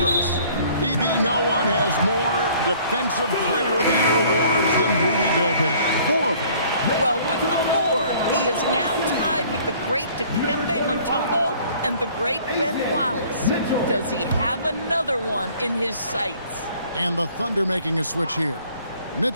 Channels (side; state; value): both; inverted; correlation -0.55